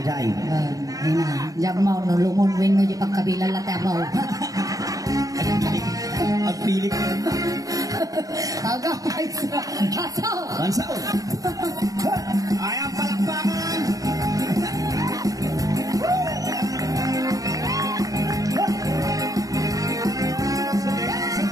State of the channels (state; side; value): late; left; 0.17 ms